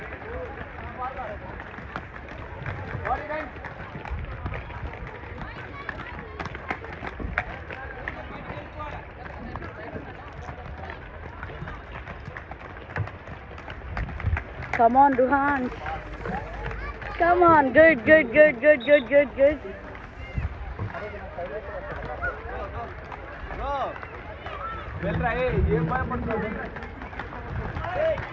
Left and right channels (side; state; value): both; identical; correlation 1.00